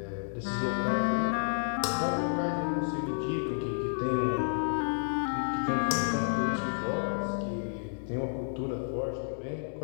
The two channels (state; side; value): silent; right; 57 dB below the other